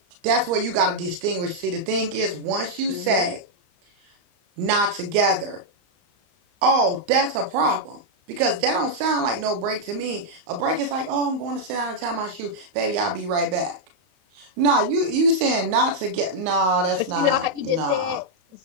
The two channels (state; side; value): late; left; 32 ms